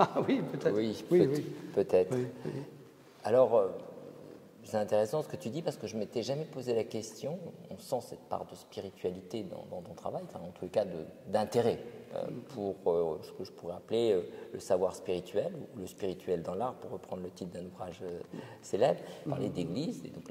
Oui, peut-être. Oui, oui. Peut-être. Oui, oui. Alors, c'est intéressant ce que tu dis parce que je ne m'étais jamais posé la question. On sent cette part de spiritualité dans ton travail, enfin, en tous les cas d'intérêt pour ce que je pourrais appeler le savoir spirituel ou le spirituel dans l'art, pour reprendre le titre d'un ouvrage célèbre, parler d'église. Et donc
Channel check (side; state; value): both; identical; correlation 1.00